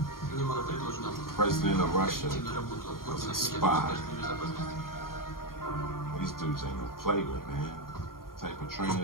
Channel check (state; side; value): late; right; 0.92 ms